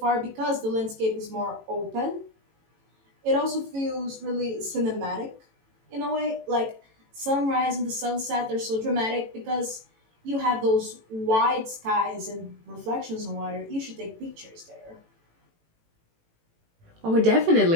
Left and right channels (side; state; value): left; late; 18 ms